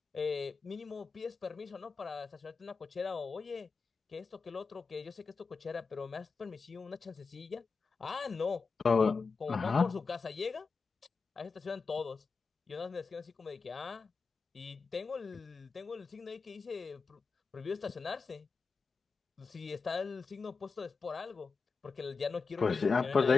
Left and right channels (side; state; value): right; quieter; 4.7 dB